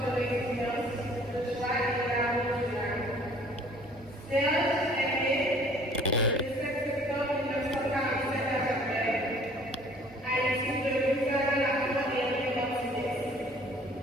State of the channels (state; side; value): normal; both; correlation 0.54